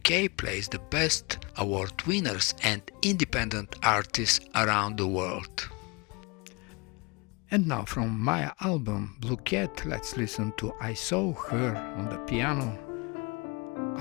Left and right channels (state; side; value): quieter; right; 28.1 dB